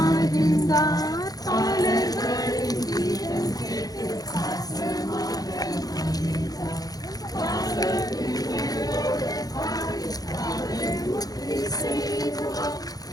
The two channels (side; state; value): right; late; 0.18 ms